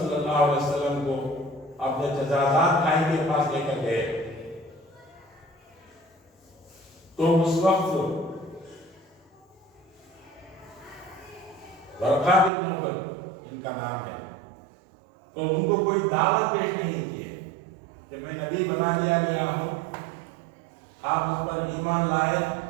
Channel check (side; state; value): left; drops out; at 12.5 s